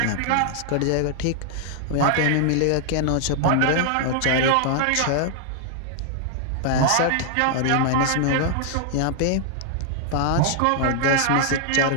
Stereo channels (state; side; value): different; both; correlation 0.00